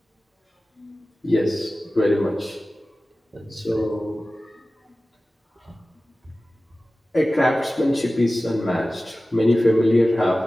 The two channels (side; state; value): both; normal; correlation 0.96